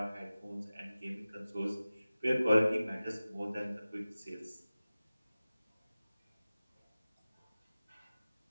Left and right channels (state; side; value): inverted; both; correlation -0.96